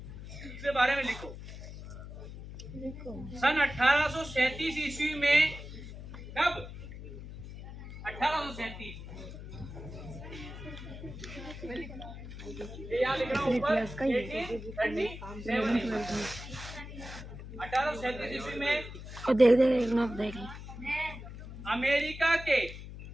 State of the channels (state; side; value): noise; left; hum, 11 dB below the sound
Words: इसके बारे में लिखो। सन 1837 ईस्वी में, कब? 1837, ये यहाँ लिख रहा हूँ ऊपर 1837 ईस्वी में देख अमेरिका के,